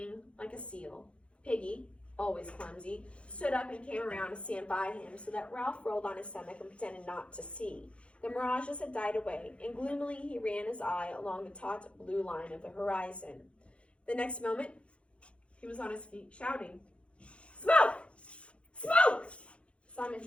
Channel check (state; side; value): late; right; 0.060 ms